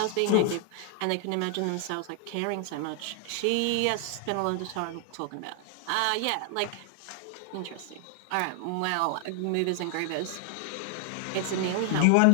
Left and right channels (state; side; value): different; both; correlation 0.00